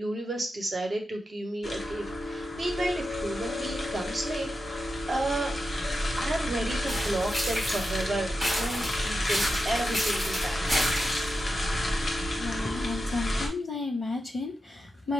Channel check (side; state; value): both; normal; correlation 0.89